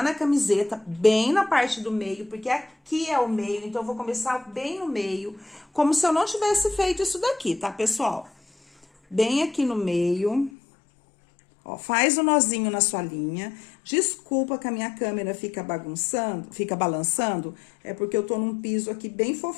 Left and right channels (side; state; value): right; drops out; at 10.5 s